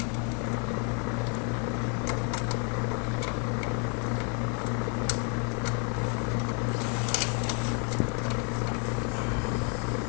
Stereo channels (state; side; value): quieter; right; 38.5 dB